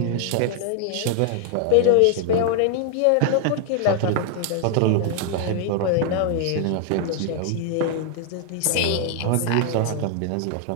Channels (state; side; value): different; both; correlation 0.00